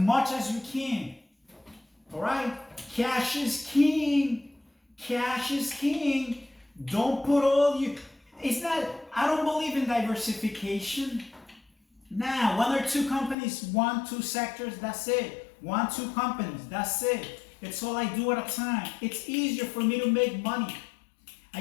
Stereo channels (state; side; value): drops out; right; at 13.4 s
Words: as you can, all right? Cash is king. Cash is king. Don't put all you... It's not... I don't believe in diversification. Nah, one or two companies, 1, 2 sectors, that's it. 1, 2 companies, that's it. It's all I do at a time. It's easier for me to make money.